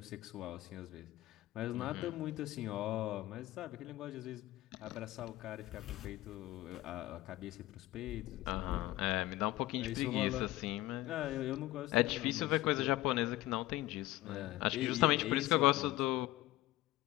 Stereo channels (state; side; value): quieter; right; 16.7 dB